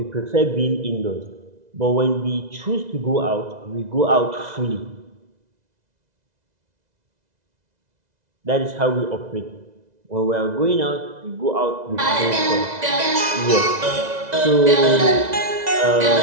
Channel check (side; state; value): left; late; 2.0 ms